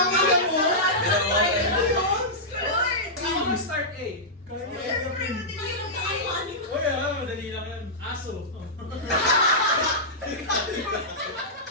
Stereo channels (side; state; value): both; normal; correlation -0.13